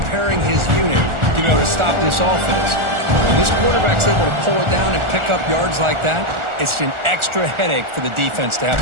his unit to be able to stop this offense. When this quarterback's able to pull it down and pick up yards like that, it's an extra headache for the defense to have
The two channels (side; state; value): left; late; 1.4 ms